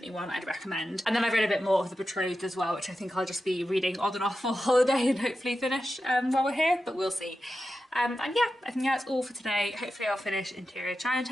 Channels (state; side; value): normal; both; correlation 0.91